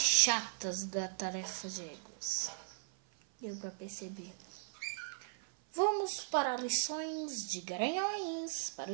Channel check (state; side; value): silent; left; 52 dB below the other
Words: da tarefa de egos. Deu pra perceber. Vamos para lições de garanhões para